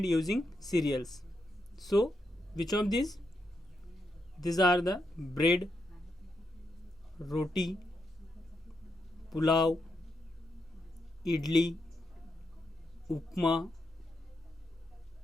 using cereals. So which of this are the bread, roti, pulao, idli, upma,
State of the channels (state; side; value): normal; both; correlation 0.83